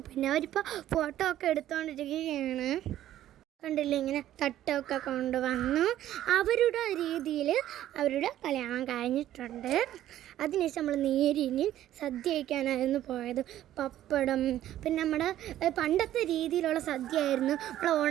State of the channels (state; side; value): quieter; left; 12.7 dB